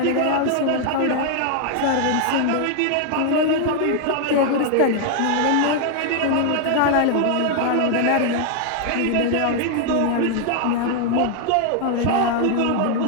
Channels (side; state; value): both; different; correlation 0.00